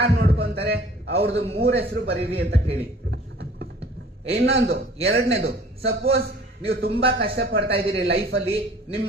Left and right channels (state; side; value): normal; both; correlation 0.50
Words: ನೋಡ್ಕೊಂತಾರೆ ಅವ್ರದ್ದು 3 ಹೆಸರು ಬರೀರಿ ಅಂತ ಕೇಳಿ. ಇನ್ನೊಂದು 2ನೇದು, ಸಪೋಸ್ ನೀವು ತುಂಬಾ ಕಷ್ಟ ಪಡ್ತಾ ಇದ್ದೀರಿ ಲೈಫ್ ಅಲ್ಲಿ, ನಿಮ್